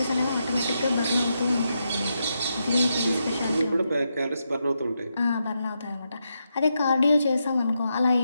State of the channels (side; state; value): both; inverted; correlation -0.84